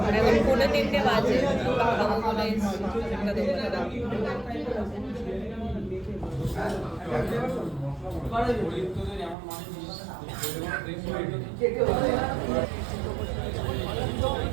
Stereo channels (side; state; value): left; drops out; at 9.3 s